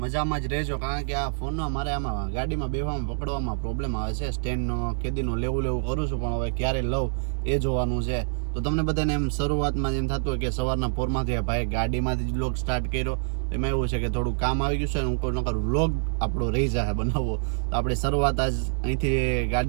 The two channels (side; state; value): left; silent; digital silence